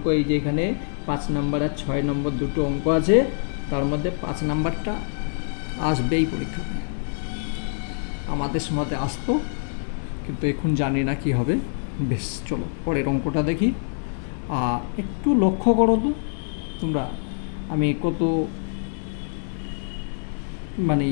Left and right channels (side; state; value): right; silent; digital silence